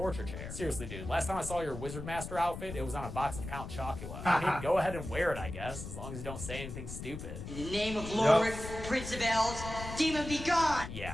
chair. Seriously, dude, last time I saw your wizard master outfit, it was on a box of Count Chocula. I mean, go ahead and wear it, I guess, as long as you don't say anything stupid. In the name of Lord, Prince of Elves, demon be gone!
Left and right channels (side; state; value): left; noise; rumble, 9 dB below the sound